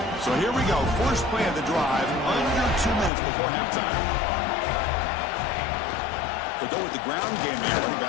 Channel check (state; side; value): drops out; right; at 3.1 s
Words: So here we go. First play of the drive, under 2 minutes before halftime. They go with the ground game there. Running